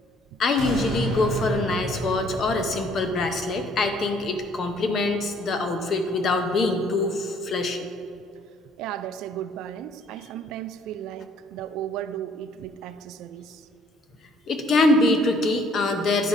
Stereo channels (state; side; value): normal; both; correlation 0.60